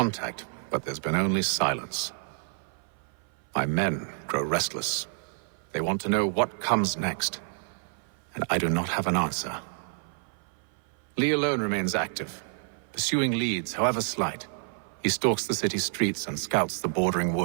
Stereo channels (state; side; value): silent; left; 56 dB below the other